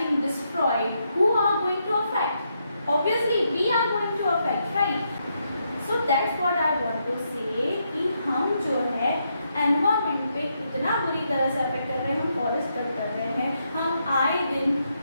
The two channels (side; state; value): both; inverted; correlation -0.80